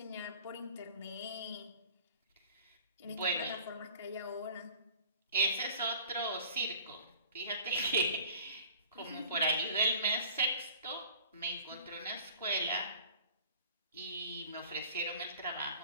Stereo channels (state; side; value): inverted; both; correlation -0.47